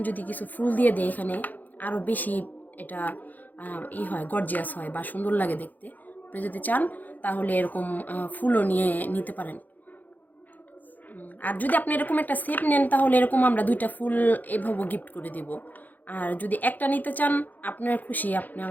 যদি কিছু ফুল দিয়ে দেয় এখানে, আরও বেশি এটা হয়, গর্জিয়াস হয় বা সুন্দর লাগে দেখতে। আপনি যদি চান তাহলে এরকম ফুলও নিয়ে নিতে পারেন। আর যদি আপনি এরকম একটা সেট নেন তাহলে এরকম আমরা দুইটা ফুল এভাবে গিফট করে দিব। আর যদি একটা নিতে চান, আপনার খুশি, আপনি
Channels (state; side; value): late; right; 0.083 ms